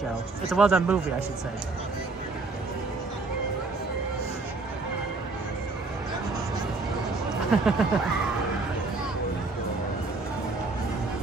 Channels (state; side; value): quieter; left; 3.6 dB